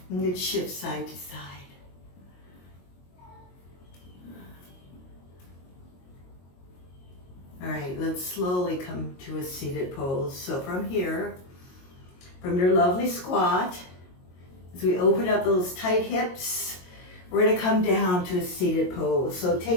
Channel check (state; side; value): late; right; 22 ms